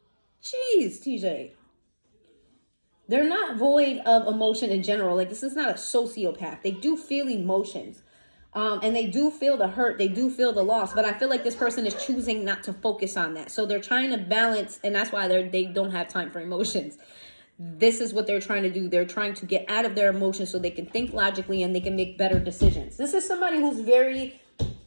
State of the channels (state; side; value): inverted; both; correlation -1.00